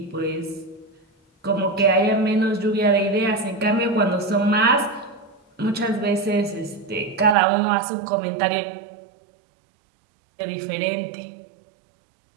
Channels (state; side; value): drops out; left; at 7.4 s